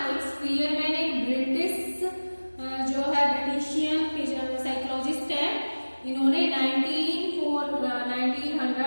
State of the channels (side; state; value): both; inverted; correlation -1.00